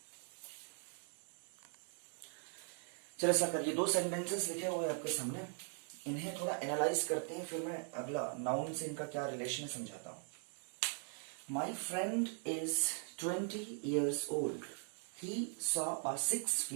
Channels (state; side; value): silent; left; 51 dB below the other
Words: चलो सरकार, ये 2 सेंटेंसेस लिखे हुए आपके सामने, इन्हें थोड़ा एनालाइज करते हैं, फिर मैं अगला नाउन से इनका क्या रिलेशन समझाता हूं। My friend is 20 years old. He saw a 6